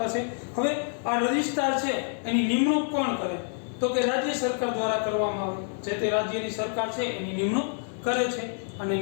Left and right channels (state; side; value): silent; right; 57 dB below the other